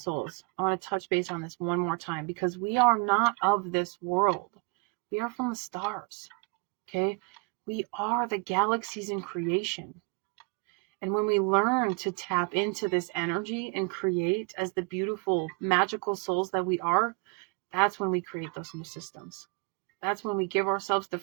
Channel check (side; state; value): left; quieter; 31.3 dB